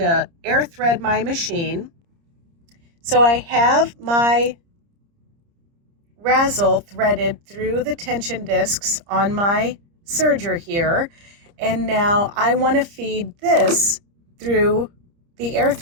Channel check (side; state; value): left; late; 30 ms